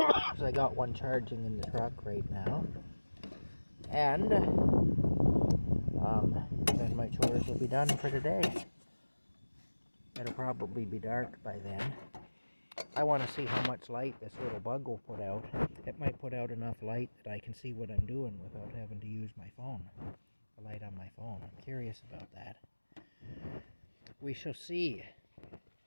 so I got one charging in the truck right now. And then my chores will be done for the day. It'll probably be dark by then. I want to see how much light this little bug will put out. It might put out enough light that I can see what I'm doing without having to use my phone. The light on my phone. I'm curious about that. We shall see.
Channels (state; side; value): inverted; both; correlation -1.00